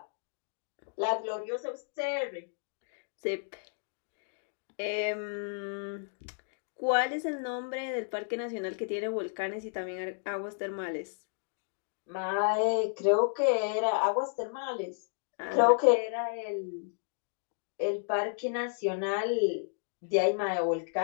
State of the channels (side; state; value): right; silent; digital silence